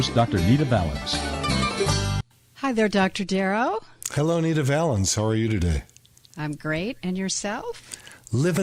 Dr. Nita Valens. Hi there, Dr. Darrow. Hello, Nita Valens. How are you today? I'm great. And yourself?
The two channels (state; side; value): identical; both; correlation 1.00